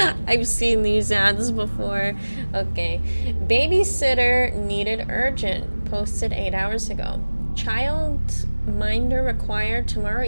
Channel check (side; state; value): both; inverted; correlation -1.00